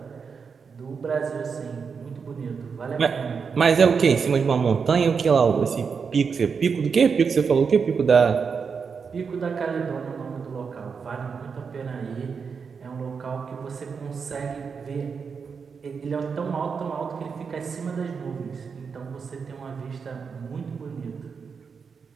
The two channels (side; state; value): left; quieter; 5.8 dB